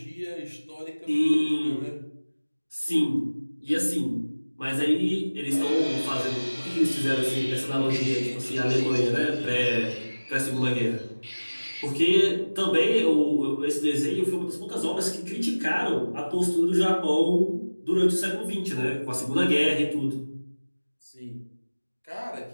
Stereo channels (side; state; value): both; inverted; correlation -1.00